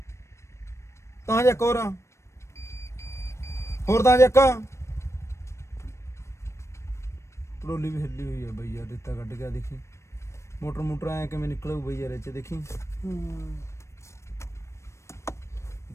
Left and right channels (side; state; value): right; late; 0.13 ms